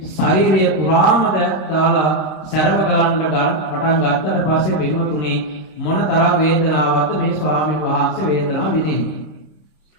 ශරීරය පුරාම දාලා සැරව ගලන්න පටන් ගත්තට පස්සේ බිමුතුනේ මොන තරම් වේදනාවක්ද මේ ස්වාමීන් වහන්සේ වේදනාව විඳින්නේ.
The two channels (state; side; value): late; right; 26 ms